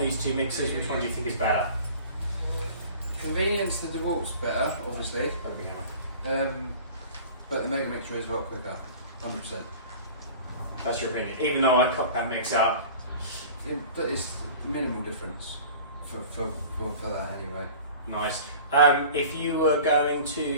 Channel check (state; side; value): inverted; both; correlation -0.42